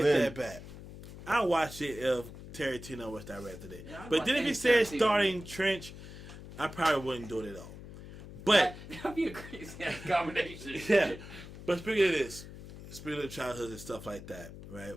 then. that back. I watch it if Tarantino was directed it. Yeah, I'd But watch then if any it said Tarantino starring Trench, I probably wouldn't do it at all. But That'd be a crazy combination. yeah. But speaking of this, speaking of childhood and stuff like that, right?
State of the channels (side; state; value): left; noise; hum, 14 dB below the sound